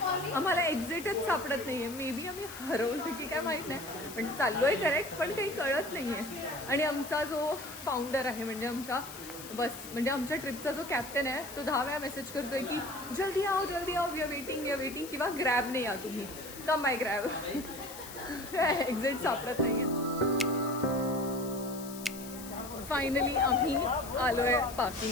आम्हाला एक्झिटच सापडत नाहीये. मे बी आम्ही हरवलो की काय माहीत नाही, पण चाललोय करेक्ट, पण काही कळत नाहीये. आणि आमचा जो फाउंडर आहे म्हणजे आमच्या आमच्या ट्रिपचा जो कॅप्टन आहे तो 10 वेळा मेसेज करतोय की जल्दी आओ वी आर वेटिंग किंवा ग्रॅबने या तुम्ही, कम बाय ग्रॅब. एक्झिट सापडत नाहीये. फायनली आम्ही आलोय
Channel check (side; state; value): left; noise; hiss, 14 dB below the sound